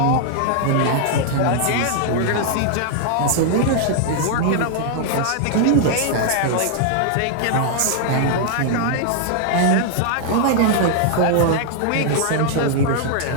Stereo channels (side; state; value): both; different; correlation 0.00